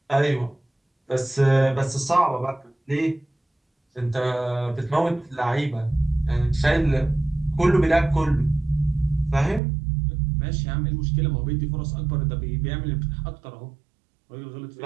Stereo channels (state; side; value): drops out; left; at 9.6 s